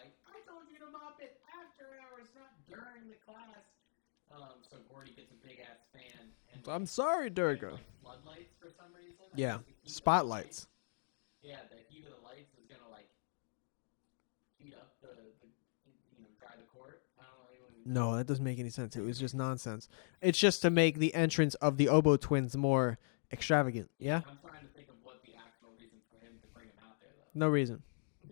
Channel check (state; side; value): silent; right; digital silence